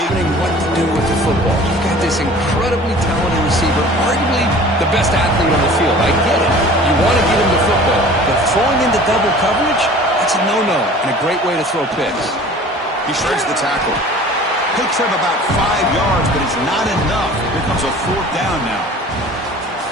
What to do with the football. You've got this incredibly talented receiver, arguably the best athlete on the field. I get it. You want to get him the football, but throwing into double coverage, that's a no-no and a great way to throw picks. He shreds the tackle. Picks up about 5 yards, but it's not enough. Here comes a 4th down now.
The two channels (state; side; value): normal; both; correlation 0.45